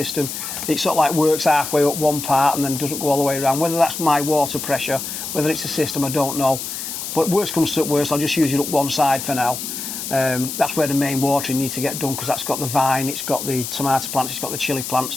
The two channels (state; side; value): noise; left; hiss, 6 dB below the sound